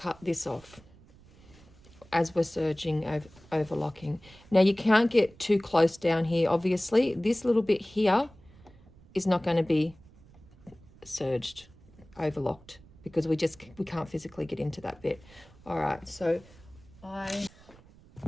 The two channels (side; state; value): right; noise; rumble, 24 dB below the sound